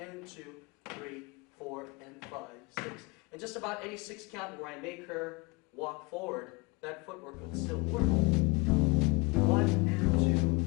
2, 3, 4, and 5, 6. And just about any 6-count where I make her walk forward, that footwork would still work. 1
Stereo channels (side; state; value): right; quieter; 26.8 dB